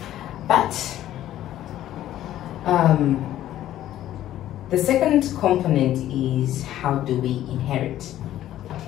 But the second component is how do we inherit,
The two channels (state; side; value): quieter; right; 12.9 dB